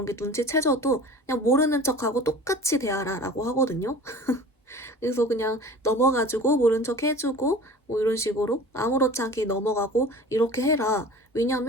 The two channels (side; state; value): both; normal; correlation 0.40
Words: 게 눈치채져도 그냥 모르는 척하고 똑같이 대하라 라고 하거든요. 그래서 그냥 넘어가지고 모른 척 해주고 뭐 이런 식으로 아무렇지 않게 넘어가고 이렇게 해라.